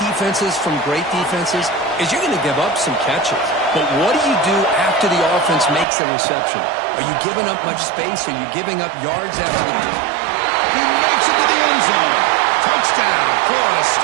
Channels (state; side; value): drops out; left; at 5.9 s